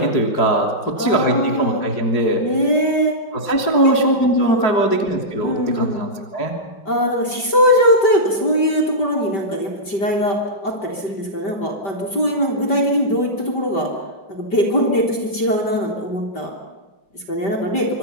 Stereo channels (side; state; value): right; late; 5.1 ms